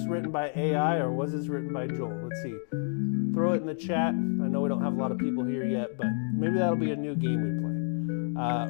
written by AI or was this written by Joel? Let's see. Throw it in the chat. I know we don't have a lot of people here yet, but maybe that'll be a new game we play.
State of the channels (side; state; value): right; silent; 59 dB below the other